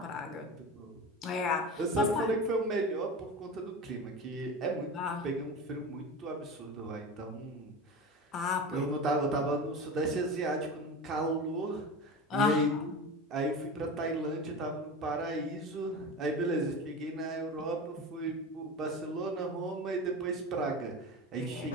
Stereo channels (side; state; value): both; normal; correlation 0.29